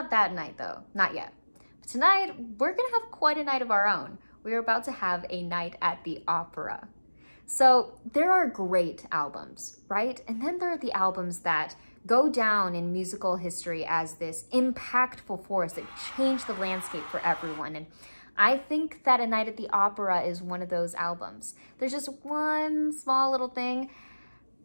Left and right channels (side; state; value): both; inverted; correlation -1.00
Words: that night though, not yet. But tonight, we're gonna have quite a night of our own. We're about to have a night at the opera. So there are great albums, right? And then there are the albums that go down in musical history as this impactful force that changed the landscape for everyone. And I think that A Night at the Opera is one of those albums. There's just one small little thing.